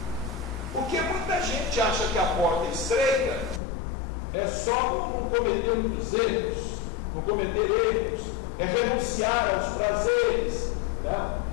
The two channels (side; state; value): right; drops out; at 3.6 s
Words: Porque muita gente acha que a porta estreita é só não cometer muitos erros, não cometer erros, é renunciar aos prazeres. Né?